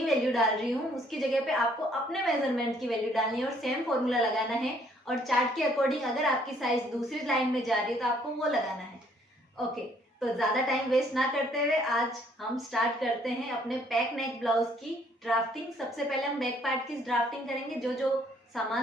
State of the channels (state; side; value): normal; both; correlation 0.64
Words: वैल्यू डाल रही हूँ उसकी जगह पे आपको अपने मेजरमेंट की वैल्यू डालनी है और सेम फॉर्मूला लगाना है। और चार्ट के अकॉर्डिंग अगर आपकी साइज दूसरी लाइन में जा रही है तो आपको वो लगाना है। ओके, तो ज्यादा टाइम वेस्ट ना करते हुए आज हम स्टार्ट करते हैं अपने पैक नेक ब्लाउज की ड्राफ्टिंग। सबसे पहले हम बैक पार्ट की ड्राफ्टिंग करेंगे। जो जो